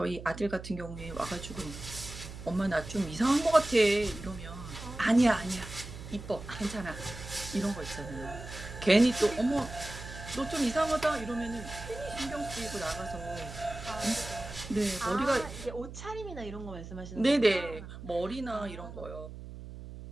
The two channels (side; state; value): right; noise; hum, 12 dB below the sound